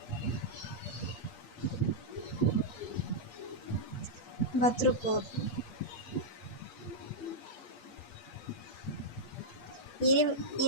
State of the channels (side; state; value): right; late; 8.4 ms